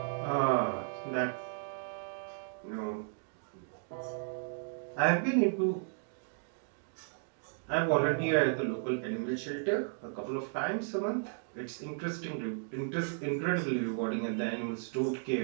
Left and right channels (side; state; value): left; silent; digital silence